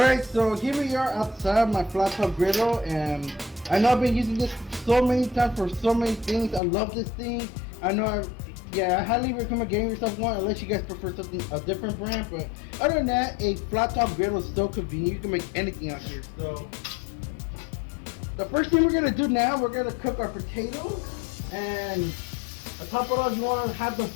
so here we are outside my flat top griddle, and I know I've been using this so many times for so many things. I love this thing. I highly recommend getting yourself one unless you guys prefer a different brand. But other than that, a flat top griddle is so convenient. You can make anything out here. So the first thing we're gonna do now, we're gonna cook our potatoes, and on top of that, you want to have them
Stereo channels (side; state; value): right; drops out; at 6.6 s